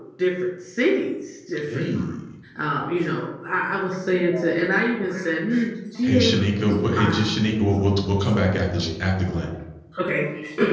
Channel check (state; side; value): identical; both; correlation 1.00